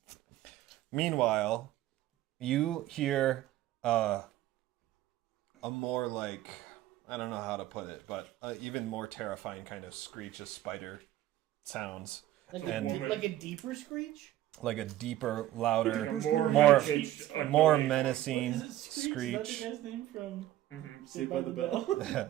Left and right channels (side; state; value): left; quieter; 14.0 dB